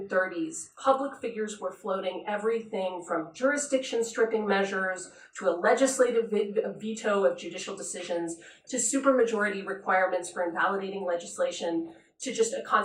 public figures were floating everything from jurisdiction stripping measures to a legislative veto of judicial decisions to supermajority requirements for invalidating legislation to just a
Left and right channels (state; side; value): identical; both; correlation 1.00